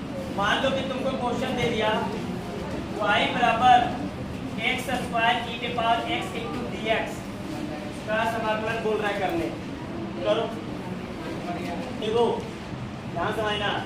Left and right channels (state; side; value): identical; both; correlation 1.00